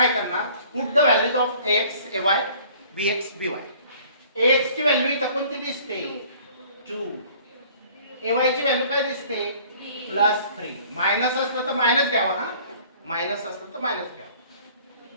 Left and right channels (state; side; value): inverted; both; correlation -0.53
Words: करणार? Put the values of x a y b x b y. X ची व्हॅल्यू इथं कोणती दिसते? 2. ए वाय ची व्हॅल्यू काय दिसते? +3. मायनस असलं तर मायनस घ्यावा. हा, मायनस असलं तर मायनस घ्यावा.